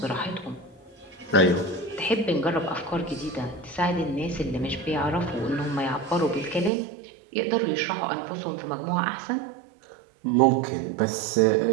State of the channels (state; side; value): drops out; left; at 6.7 s